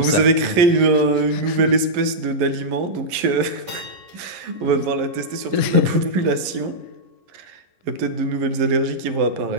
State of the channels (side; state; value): left; late; 11 ms